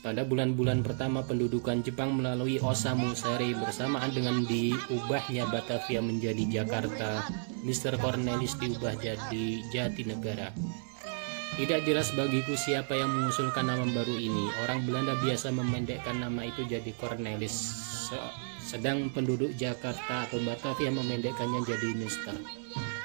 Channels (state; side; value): silent; left; 56 dB below the other